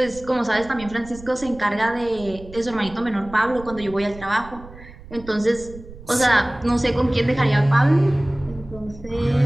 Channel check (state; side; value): noise; right; rumble, 17 dB below the sound